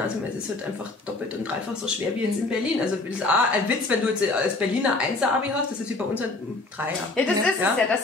es ist halt einfach doppelt und dreifach so schwer wie jetzt in Berlin. Also das ist auch ein Witz, wenn du jetzt als Berliner 1er-Abi hast, das ist wie bei uns ein 3er. Ja, das ist es ja, dass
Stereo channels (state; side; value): quieter; right; 3.2 dB